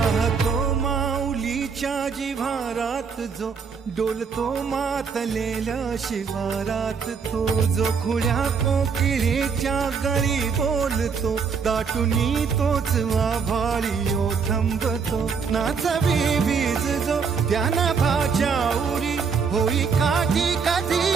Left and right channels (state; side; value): quieter; left; 5.8 dB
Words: माऊलीच्या जिव्हारात जो डोलतो मातलेल्या शिवारात तो जो खुल्या कोकिळेच्या गळी बोलतो दाटुनी तोच आभाळी थांबतो नाचवी वीज जो त्यानं भाच्या उरी होई काठी